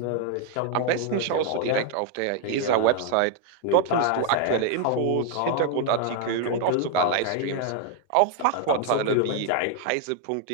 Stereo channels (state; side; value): different; both; correlation 0.01